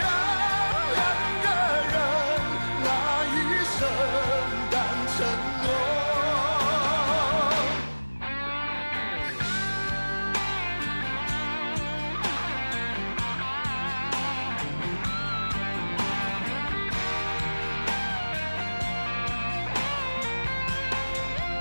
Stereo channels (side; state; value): both; inverted; correlation -1.00